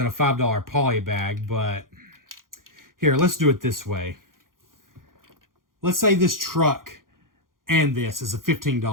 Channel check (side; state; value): left; late; 0.90 ms